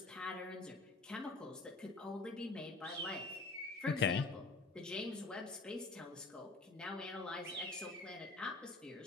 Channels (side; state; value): right; quieter; 3.5 dB